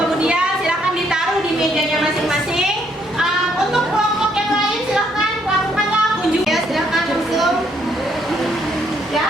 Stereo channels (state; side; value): normal; both; correlation 0.70